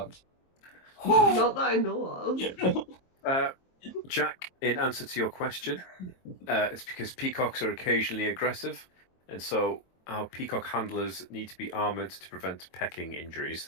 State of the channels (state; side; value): late; right; 23 ms